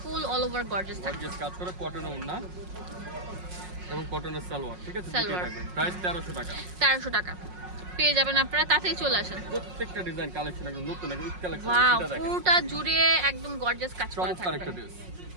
অল ওভার গর্জিয়াস থাকবে, গর্জিয়াস কাজ করে, কটনের ওড়না এবং কটনের সালোয়ার, ঠিক আছে? প্রাইস 1300 টাকা। 1300 টাকা পেয়ে যাবেন আপনারা, তাতেই চলে আসেন। প্রত্যেকটা ডিজাইন কালেকশন একদম নতুন, একদম কালেকশন। ওয়াও, পুরোটা জুড়ে একদম গর্জিয়াস কাজ করা থাকবে। একটা ড্রেস,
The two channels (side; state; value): left; late; 5.5 ms